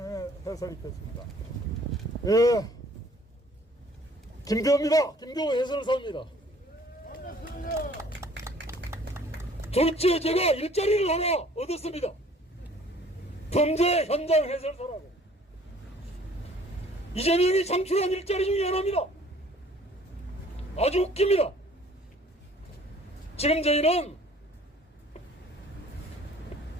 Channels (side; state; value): both; normal; correlation 0.54